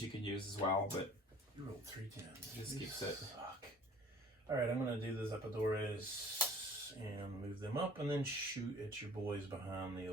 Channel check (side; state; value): both; normal; correlation 0.51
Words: you can use as well, but You rolled 3 10s. Just keeps it. Fuck. All right, I'm gonna do the Zapadores and move them up, and then shoot at your boys behind the